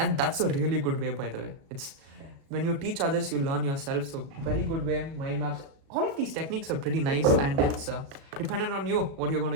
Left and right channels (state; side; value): late; left; 36 ms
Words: that's a really good way, by the way. It's when you teach others, you learn yourself. So very good way. Mind maps. All of these techniques are pretty nice, and it's dependent on you what you're going